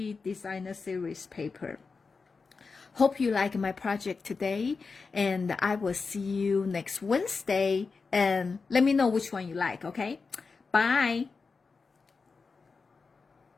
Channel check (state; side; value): quieter; right; 4.6 dB